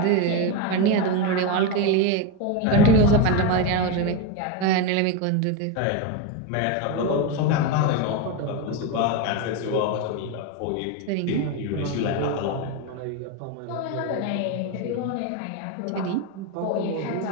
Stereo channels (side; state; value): both; different; correlation 0.04